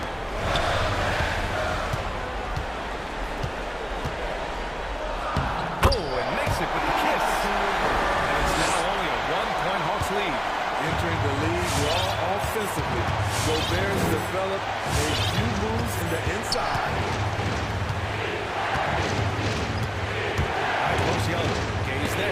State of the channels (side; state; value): both; identical; correlation 1.00